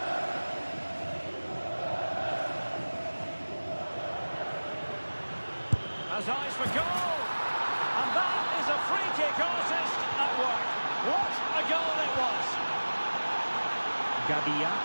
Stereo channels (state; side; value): inverted; both; correlation -1.00